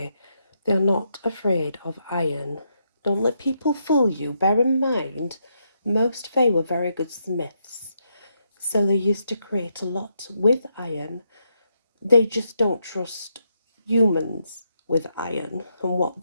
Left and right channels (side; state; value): both; inverted; correlation -0.80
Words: They are not afraid of iron. Don't let people fool you. Bear in mind, most fae were very good smiths. So they used to create a lot with iron. They just don't trust humans with iron and what